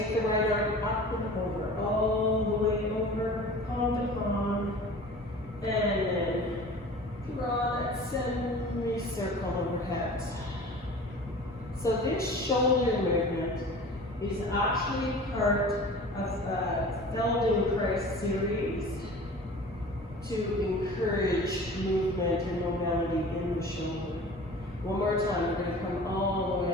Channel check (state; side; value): normal; both; correlation 0.41